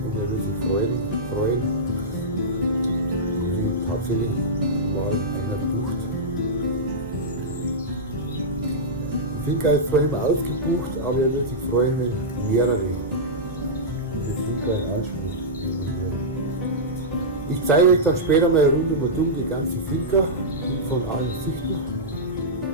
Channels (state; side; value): normal; both; correlation -0.12